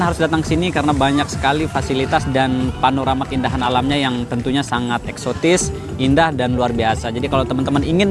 harus datang ke sini karena banyak sekali fasilitas dan panorama keindahan alamnya yang tentunya sangat eksotis, indah, dan luar biasa. Jadi kalau teman-teman ingin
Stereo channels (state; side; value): identical; both; correlation 1.00